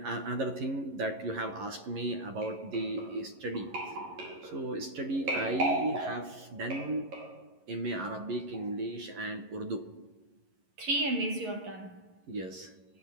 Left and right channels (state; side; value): late; left; 11 ms